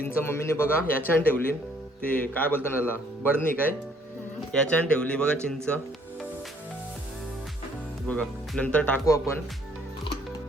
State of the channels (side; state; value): both; normal; correlation 0.63